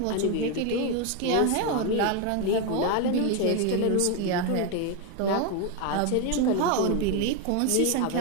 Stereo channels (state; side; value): different; both; correlation 0.02